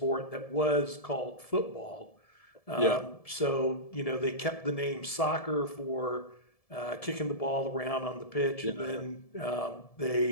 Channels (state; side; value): late; right; 1.7 ms